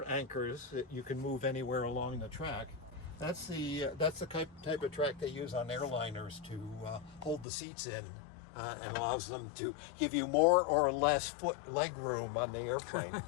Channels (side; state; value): right; drops out; at 7.5 s